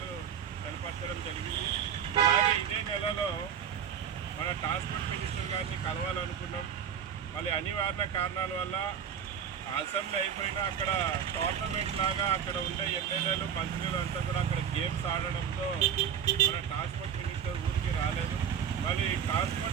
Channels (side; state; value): left; quieter; 8.2 dB